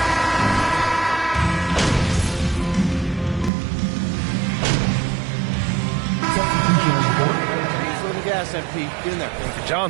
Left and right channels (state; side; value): drops out; left; at 3.5 s